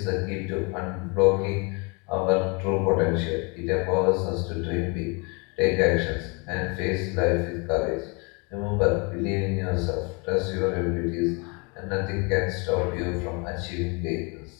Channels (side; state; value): right; quieter; 31.4 dB